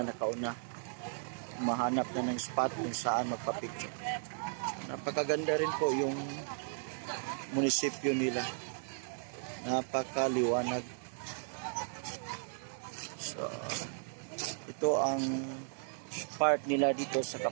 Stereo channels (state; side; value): silent; left; digital silence